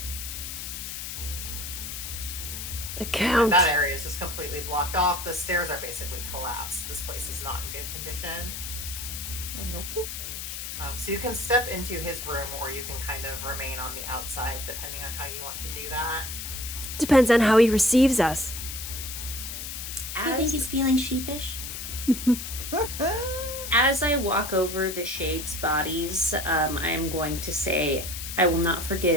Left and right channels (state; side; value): noise; left; hiss, 7 dB below the sound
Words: The count. That area is just completely blocked off. The stairs are basically collapsed. This place is not in good condition. And go poop. So you can step into his room, or you can kind of remain on the outside, depending on how you want to do that. Depends on how he receives us. Do you think he's feeling sheepish? As I walk over the shades' bodies, I am going to say, I will not